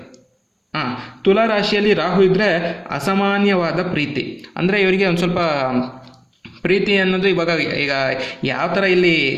ರಾಶಿಯಲ್ಲಿ ರಾಹು ಇದ್ದರೆ ಅಸಾಮಾನ್ಯವಾದ ಪ್ರೀತಿ. ಅಂದರೆ ಇವರಿಗೆ ಒಂದು ಸ್ವಲ್ಪ ಪ್ರೀತಿ ಅನ್ನೋದು ಈಗ ಯಾವ ಥರ ಇಲ್ಲಿ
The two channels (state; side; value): identical; both; correlation 1.00